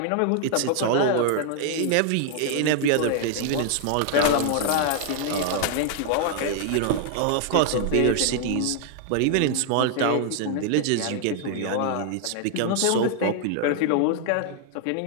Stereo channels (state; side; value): different; both; correlation 0.00